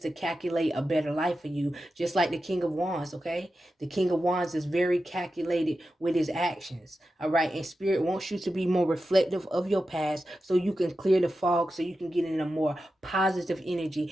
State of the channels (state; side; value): normal; both; correlation 0.91